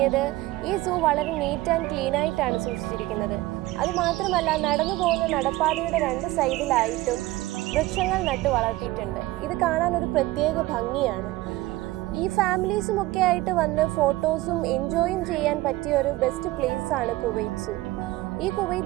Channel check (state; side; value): quieter; left; 18.4 dB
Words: ഈ സൂ വളരെ നീറ്റ് ആൻഡ് ക്ലീൻ ആയിട്ടാണ് സൂക്ഷിച്ചിരിക്കുന്നത്. അതുമാത്രമല്ല, നടന്നു പോകുന്ന നടപ്പാതയുടെ 2 സൈഡിലായിട്ടും വൃക്ഷങ്ങൾ നട്ടു വളർത്തിയിട്ടുണ്ട്. ഇത് കാണാൻ ഒരു പ്രത്യേക ഭംഗിയാണ്. ഈ ഫാമിലീസും ഒക്കെ ആയിട്ട് വന്ന് ഫോട്ടോസും എൻജോയും ചെയ്യാൻ പറ്റിയ ഒരു ബെസ്റ്റ് പ്ലേസ് ആണ് കുവൈറ്റ് സൂ. ഈ